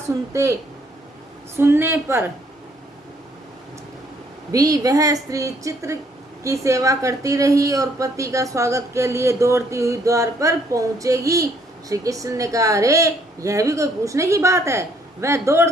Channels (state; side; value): normal; both; correlation 0.66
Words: सुनने पर भी वह स्त्री चित्र की सेवा करती रही और पति का स्वागत के लिए दौड़ती हुई द्वार पर पहुंचेगी। श्री कृष्ण ने कहा, अरे यह भी कोई पूछने की बात है, वह